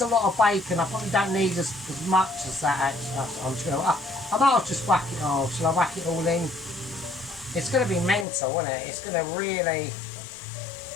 a lot of bacon. I probably don't need as much as that actually. I might just whack it all. Shall I whack it all in? It's going to be mental, isn't it? It's going to really...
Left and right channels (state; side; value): drops out; right; at 8.2 s